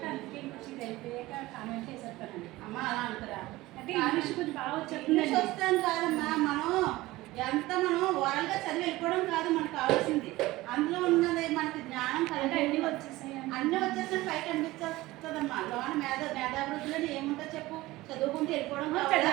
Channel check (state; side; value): quieter; left; 18.7 dB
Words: అందుకే ఇంకొచ్చి వెళ్ళిపోయాక కామెంట్ చేసేస్తానండి. అమ్మ అలా అంటారా? అంటే ఇంగ్లీష్ కొంచెం బాగా ఇంగ్లీష్ వస్తాను కాదమ్మా, మనం ఓరల్గా చదివి వెళ్ళిపోవడం కాదు మనకు కావాల్సింది. అందులో ఉన్నది మనకి జ్ఞానం కలిగి అన్నీ వచ్చేసాయి. అన్నీ వచ్చేసిన పైకి అనిపించేస్తుంది వస్తుందమ్మా. లోన మేధాభివృద్ధిలో ఏముంటుంది చెప్పు? చదువుకుంటూ వెళ్ళిపోవడం కావాలా?